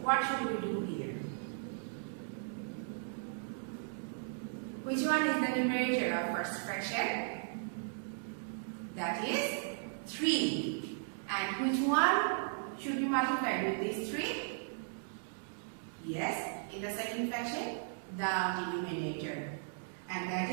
what should we do here? Which one is the numerator of first fraction? That is 3. And which one should be multiplied with these 3? Yes, in the second fraction, the denominator. And that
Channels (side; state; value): left; silent; digital silence